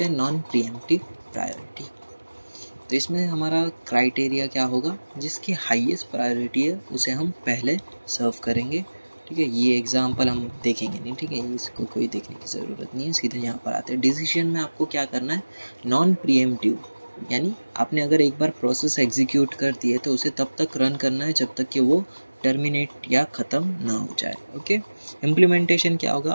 हैं नॉन प्रीएम्प्टिव प्रायोरिटी। तो इसमें हमारा क्राइटेरिया क्या होगा, जिसकी हाईएस्ट प्रायोरिटी है उसे हम पहले सर्व करेंगे। ठीक है, ये एग्जांपल हम देखेंगे नहीं, ठीक है, इसको कोई देखने की ज़रूरत नहीं है, सीधे यहाँ पर आते हैं। डिसीजन में आपको क्या करना है, नॉन प्रीएम्प्टिव, यानी आपने अगर एक बार प्रोसेस एग्जीक्यूट कर दी है तो उसे तब तक रन करना है जब तक कि वो टर्मिनेट या ख़त्म ना हो जाए। ओके, इम्प्लीमेंटेशन क्या होगा,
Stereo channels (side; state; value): both; inverted; correlation -1.00